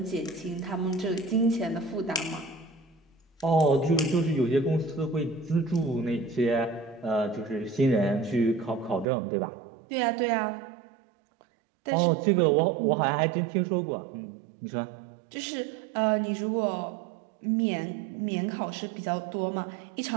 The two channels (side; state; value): left; drops out; at 9.1 s